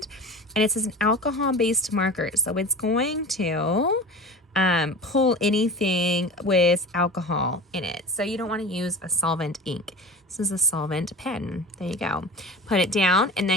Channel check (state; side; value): normal; both; correlation 0.34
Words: and it's an alcohol-based marker, so it's going to pull anything with alcohol in it. So you don't want to use a solvent ink. This is a solvent pen. There you go. Put it down and